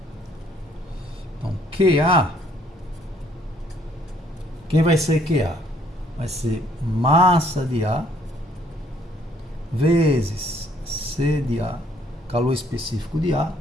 Então QA. Quem vai ser QA? Vai ser massa de A vezes C de A, calor específico de A,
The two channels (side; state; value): both; normal; correlation 0.64